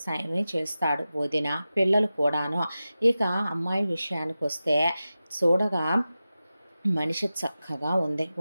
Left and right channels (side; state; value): both; inverted; correlation -0.94